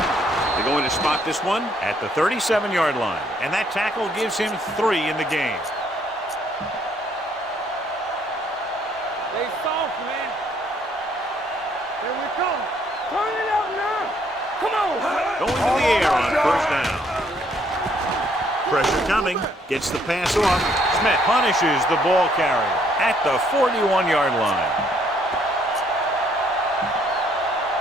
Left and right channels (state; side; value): normal; both; correlation 0.67